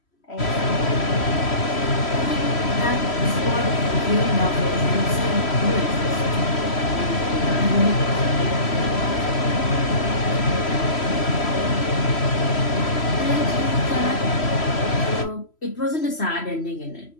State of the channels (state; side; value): late; right; 3.0 ms